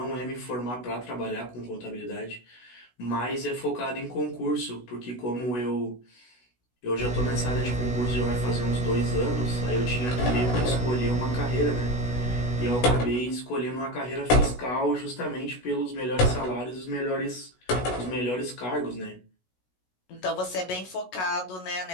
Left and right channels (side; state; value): right; late; 16 ms